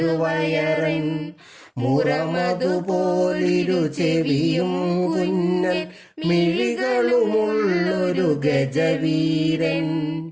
മുറമതുപോലിരു ചെവിയും കുഞ്ഞൻ മിഴികളുമുള്ളൊരു ഗജവീരൻ,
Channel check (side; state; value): both; identical; correlation 1.00